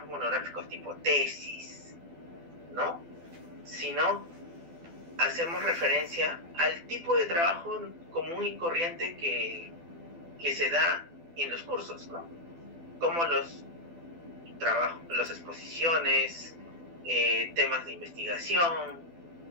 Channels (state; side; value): late; left; 12 ms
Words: monográficos tipo tesis, ¿no?, sino hacemos referencia al tipo de trabajo común y corriente que se da en los cursos, ¿no? Como los trabajos, las exposiciones, temas de investigación,